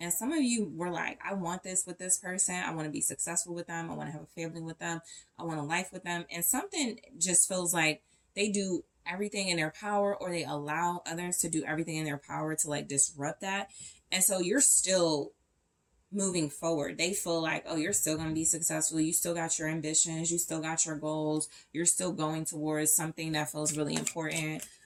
some of you were like, I want this with this person. I want to be successful with them. I want to have a family with them. I want a life with them. And something just feels like they do everything in their power, or they allow others to do everything in their power to like disrupt that. And so you're still moving forward. They feel like, oh, you're still going to be successful. You still got your ambitions. You still got your goals. You're still going towards something that feels really important.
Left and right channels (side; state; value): both; identical; correlation 1.00